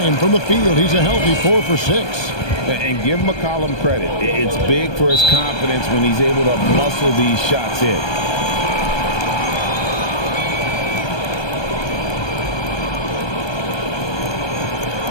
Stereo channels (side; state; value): right; late; 1.2 ms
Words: from the field. He's a healthy 4 for 6. And give McCollum credit. It's big for his confidence when he's able to muscle these shots in.